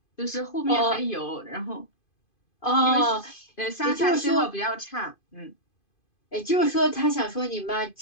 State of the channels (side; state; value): right; late; 2.5 ms